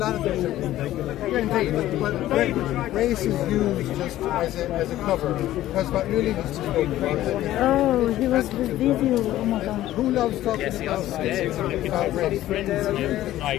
of things. Indeed, but race is used just as a cover, because what really needs to go Oh, he was the video. Oh my god. Who loves talking about race?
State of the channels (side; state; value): right; quieter; 14.2 dB